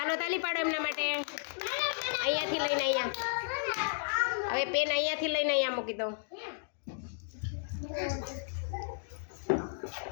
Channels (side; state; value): right; silent; digital silence